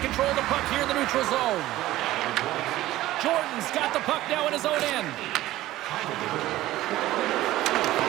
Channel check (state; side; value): quieter; left; 15.7 dB